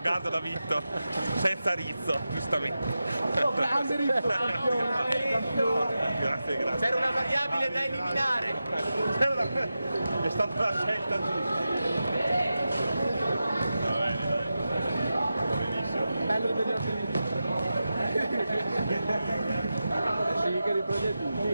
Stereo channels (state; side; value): inverted; both; correlation -0.92